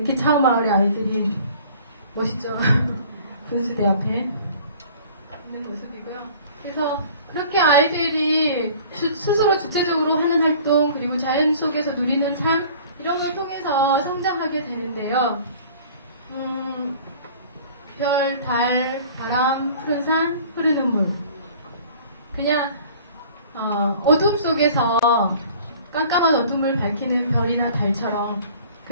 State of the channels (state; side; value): inverted; both; correlation -0.48